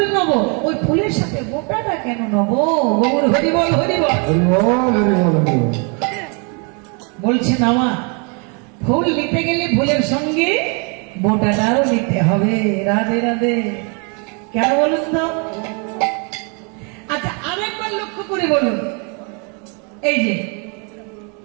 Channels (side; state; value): left; quieter; 35.3 dB